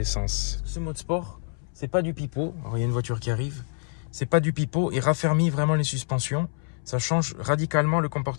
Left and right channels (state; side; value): silent; right; 61 dB below the other